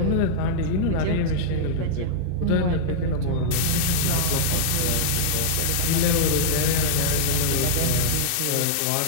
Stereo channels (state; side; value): different; both; correlation -0.02